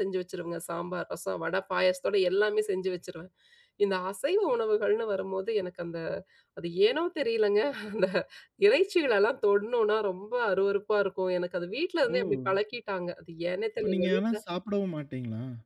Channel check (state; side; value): identical; both; correlation 1.00